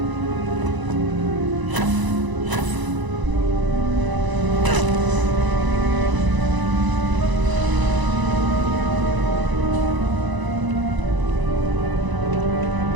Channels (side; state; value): left; late; 1.0 ms